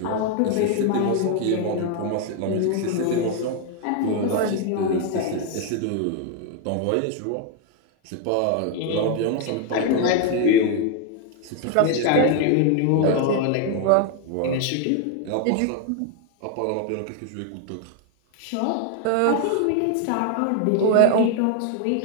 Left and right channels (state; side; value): different; both; correlation 0.01